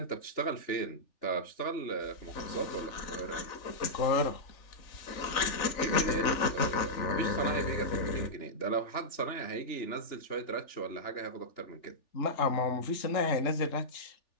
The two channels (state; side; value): late; right; 3.4 ms